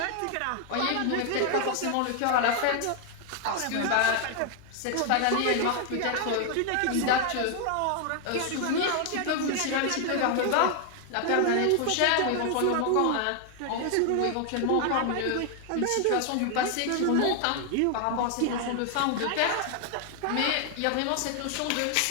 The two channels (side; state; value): both; different; correlation 0.00